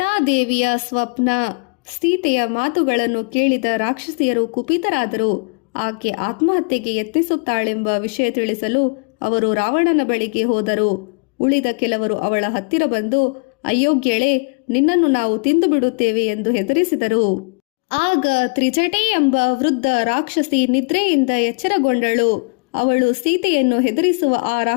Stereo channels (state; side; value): quieter; right; 34.6 dB